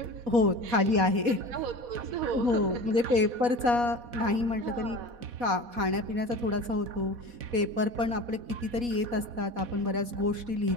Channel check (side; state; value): left; late; 4.1 ms